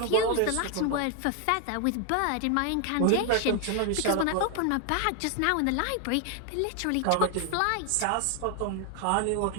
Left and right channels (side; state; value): both; different; correlation 0.01